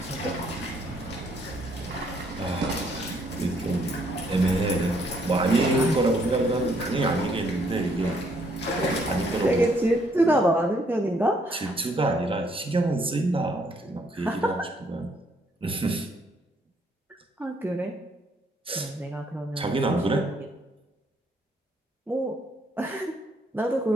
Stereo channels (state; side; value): normal; both; correlation 0.69